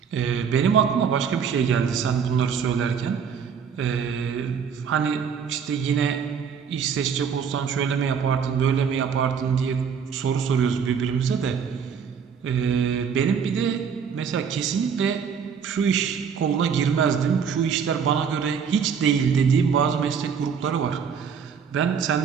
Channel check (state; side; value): quieter; left; 6.8 dB